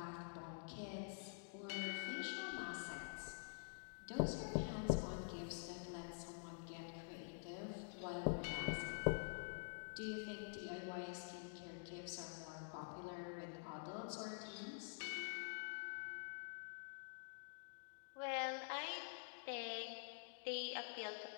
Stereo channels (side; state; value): right; silent; digital silence